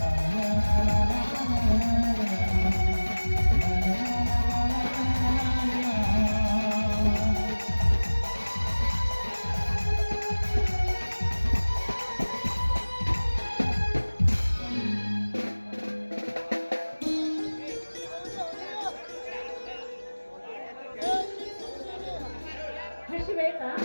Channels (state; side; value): inverted; both; correlation -1.00